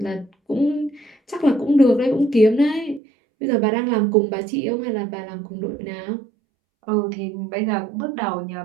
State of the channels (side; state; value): left; drops out; at 3.0 s